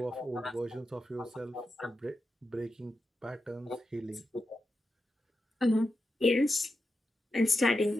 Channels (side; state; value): both; normal; correlation 0.89